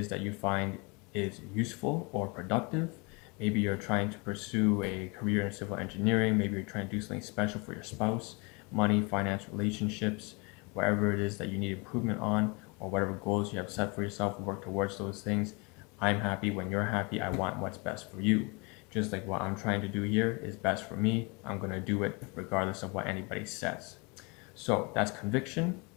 that you find is useful or productive. Maybe you're trying to pursue a career in civil engineering, maybe you're trying to do something special for your spouse, money, finance, relationships, wherever it is that you need improvement on, or whatever goals you have set for yourself, work towards those things. I'm happy when you're happy. I want what's best for you. Just like what I'm trying to do here is best for me, I'm going to do it regardless of what anybody says. So that's conviction,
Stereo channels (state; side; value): quieter; right; 29.4 dB